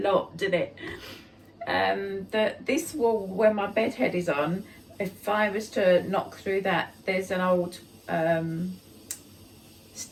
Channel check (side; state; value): both; identical; correlation 1.00